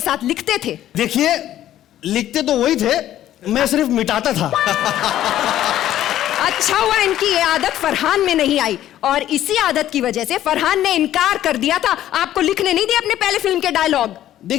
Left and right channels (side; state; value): right; quieter; 12.5 dB